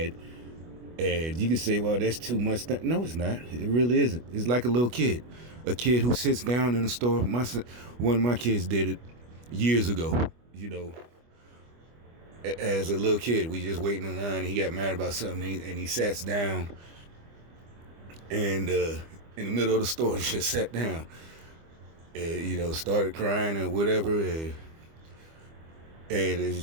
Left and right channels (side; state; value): left; late; 25 ms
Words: and you could say, well, that's too much. No, it's not. It really isn't. It's like a little kid. A kid who sits down in a store. One of my kids did it years ago, as a little kid. We just waiting in line, and he got mad about something, and he sat down, and in the middle of the store, he just sat down, and, started crying or whatever, and it's